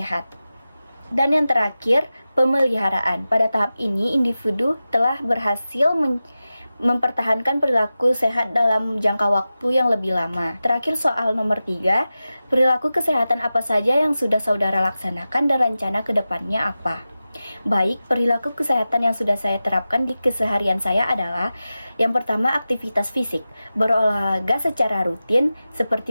Dan yang terakhir, pemeliharaan. Pada tahap ini, individu telah berhasil mempertahankan perilaku sehat dalam jangka waktu yang lebih lama. Terakhir, soal nomor 3, perilaku kesehatan apa saja yang sudah saudara laksanakan dan rencana ke depannya apa? Baik, perilaku kesehatan yang sudah saya terapkan di keseharian saya adalah: yang pertama, aktivitas fisik, berolahraga secara rutin seperti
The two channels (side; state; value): both; inverted; correlation -0.94